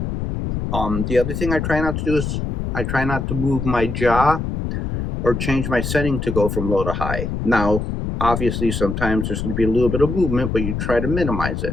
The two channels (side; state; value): left; noise; rumble, 3 dB below the sound